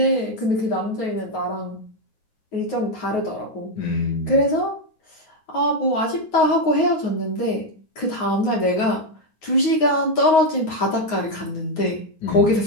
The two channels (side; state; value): right; late; 9.4 ms